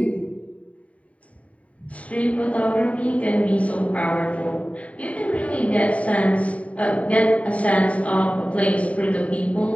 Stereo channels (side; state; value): right; late; 0.067 ms